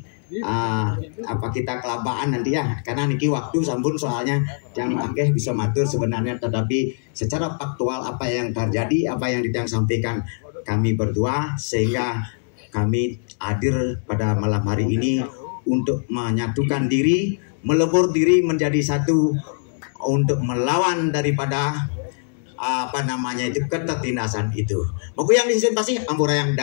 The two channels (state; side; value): silent; right; digital silence